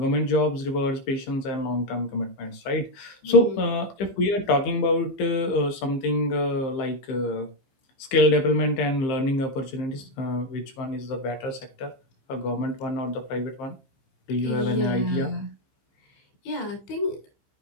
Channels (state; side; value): late; right; 15 ms